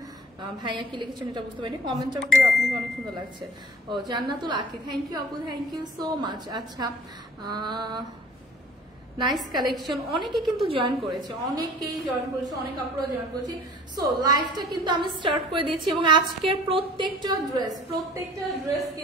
ভাইয়া কি লিখেছেন এটা বুঝতে পারিনি। কমেন্টটা করে আপনাকে অনেক সুন্দর লাগছে। ও জান্নাতুল আকি, থ্যাংক ইউ আপু, থ্যাংক ইউ সো মাচ। আচ্ছা, নাইস কালেকশন। অনেকে কিন্তু জয়েন করেছে, অনেকেই জয়েন করেছে, অনেক আপুরা জয়েন করেছে। সো লাইভটা কিন্তু আমি স্টার্ট করে দিচ্ছি এবং আজকের প্রত্যেকটা ড্রেস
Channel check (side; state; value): both; normal; correlation 0.49